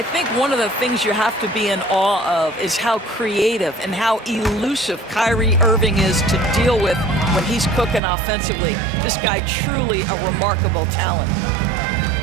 think one of the things you have to be in awe of is how creative and how elusive Kyrie Irving is to deal with when he's cooking offensively. This guy truly a remarkable talent.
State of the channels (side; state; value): left; drops out; at 8.0 s